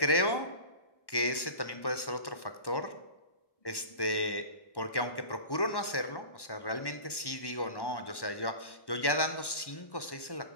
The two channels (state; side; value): late; right; 1.1 ms